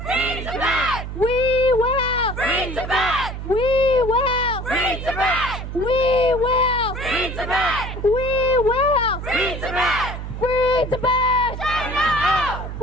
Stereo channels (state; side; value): noise; right; hum, 7 dB below the sound